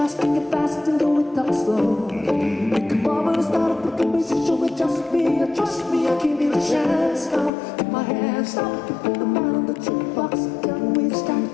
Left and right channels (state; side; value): drops out; right; at 7.5 s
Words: drink it fast and then we talk slow. We can bubble, start a quick conversation with just me, I give you a chance now. Take my hand, stop, put the man on the jukebox, then we